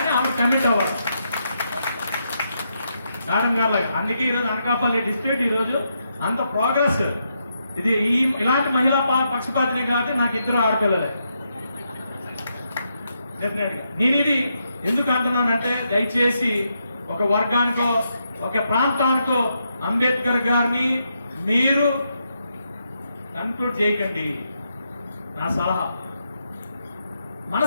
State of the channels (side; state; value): both; inverted; correlation -0.81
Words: ఆమె కమిట్ అవ్వాలి మేడం గారు లాగా. అందుకే ఈరోజు అనకాపల్లి డిస్ట్రిక్ట్ ఈరోజు అంత ప్రోగ్రెస్. ఇది ఇలాంటి మహిళా పక్షపాతిని కాబట్టి నాకు ఇద్దరు ఆడపిల్లలే. డెఫినెట్ గా నేను ఇది ఎందుకు అంటున్నానంటే, దయచేసి ఒక వర్గానికో ఒక ప్రాంతానికో అంబేద్కర్ గారిని మీరు కన్క్లూడ్ చేయకండి. నా సలహా